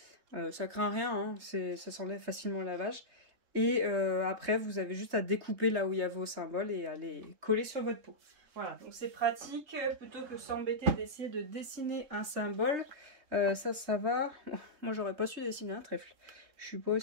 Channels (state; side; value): late; left; 3.7 ms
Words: Ça craint rien, hein, ça s'enlève facilement au lavage. Et après, vous avez juste à découper là où il y a vos symboles, et à les coller sur votre peau. Voilà, donc c'est pratique, plutôt que s'embêter d'essayer de dessiner un symbole. Ça va. Moi, j'aurais pas su dessiner un trèfle. Je suis pas